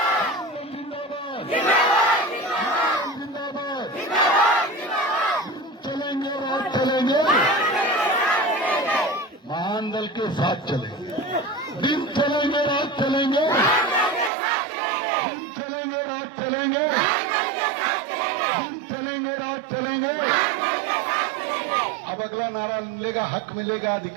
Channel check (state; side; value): drops out; left; at 14.3 s